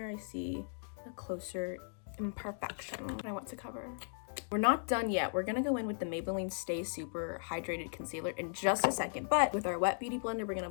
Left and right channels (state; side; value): silent; right; digital silence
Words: I see a closer imperfection I want to cover. We're not done yet. We're gonna go in with the Maybelline Stay Super Hydrated Concealer in just a second, but with our wet beauty blender, we're gonna